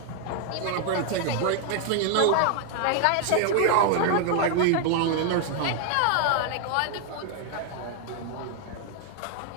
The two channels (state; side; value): different; both; correlation 0.00